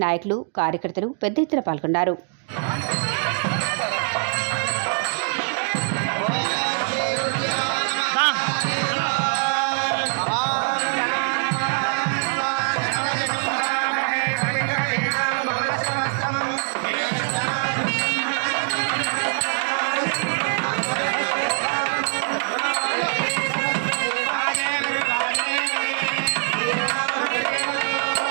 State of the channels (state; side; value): silent; left; digital silence